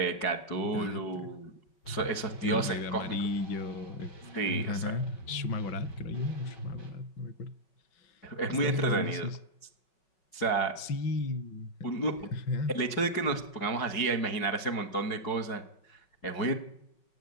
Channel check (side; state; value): right; late; 5.4 ms